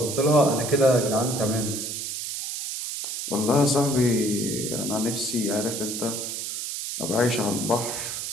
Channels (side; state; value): right; noise; hiss, 5 dB below the sound